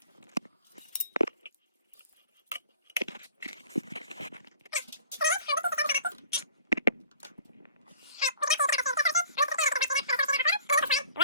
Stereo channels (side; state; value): both; inverted; correlation -0.49